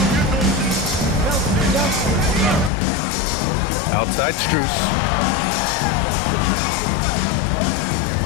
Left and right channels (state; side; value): drops out; right; at 2.7 s